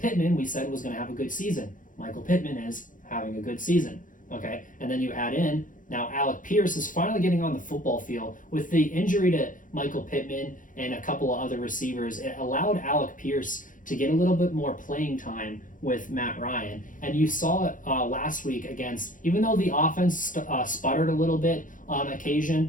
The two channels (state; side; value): late; right; 0.38 ms